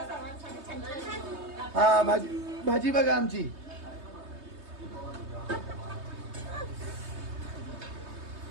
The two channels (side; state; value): left; late; 3.2 ms